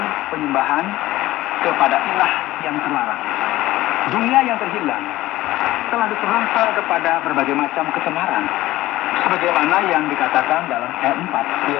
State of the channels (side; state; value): right; quieter; 16.7 dB